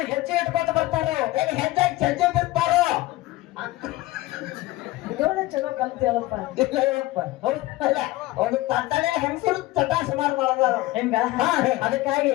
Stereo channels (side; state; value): right; quieter; 18.2 dB